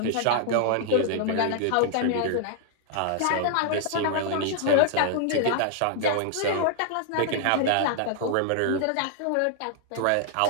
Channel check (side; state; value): both; different; correlation -0.01